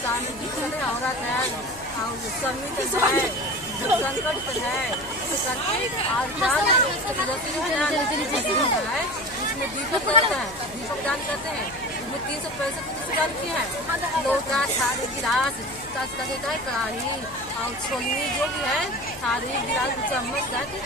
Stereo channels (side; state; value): left; noise; hum, 19 dB below the sound